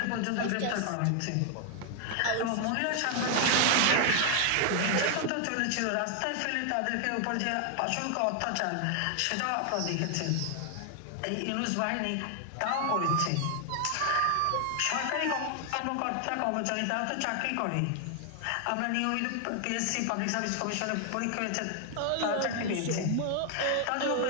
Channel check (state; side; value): different; both; correlation 0.00